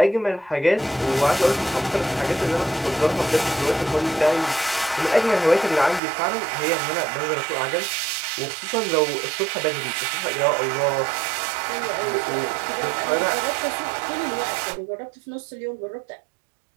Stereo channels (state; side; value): drops out; left; at 6.0 s